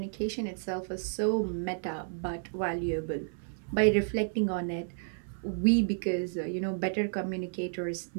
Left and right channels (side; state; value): left; silent; 57 dB below the other